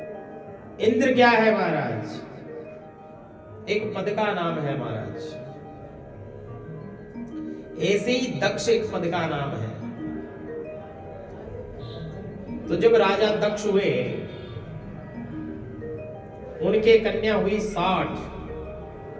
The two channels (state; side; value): identical; both; correlation 1.00